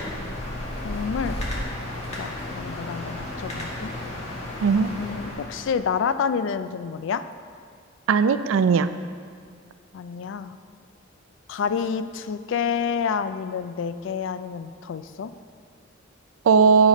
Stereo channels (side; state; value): both; normal; correlation -0.12